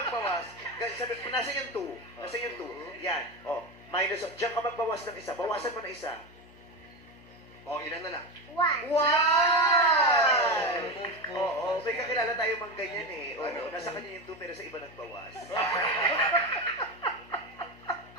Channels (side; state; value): left; noise; hum, 24 dB below the sound